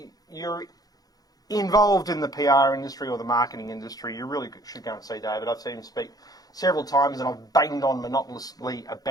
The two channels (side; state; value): right; late; 0.18 ms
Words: you're involved in the PR industry or the marketing industry, you really should go and see David. I've seen him speak several times and I've banged on monotonously